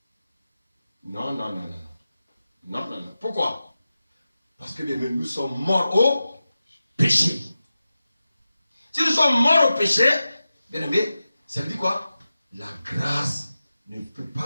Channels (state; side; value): inverted; both; correlation -0.94